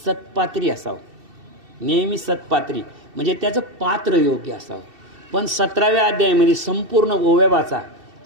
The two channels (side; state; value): left; late; 2.7 ms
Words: असावं, नेहमी सत्पात्री, म्हणजे त्याचं पात्र योग्य असावं. पण 17व्या अध्यायामध्ये संपूर्ण ओव्या वाचा,